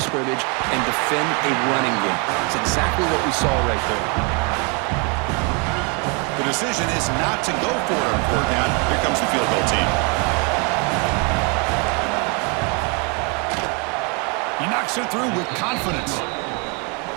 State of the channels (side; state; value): left; quieter; 33.5 dB